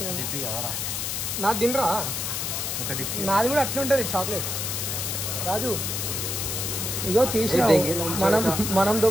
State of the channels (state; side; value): noise; left; hiss, 2 dB below the sound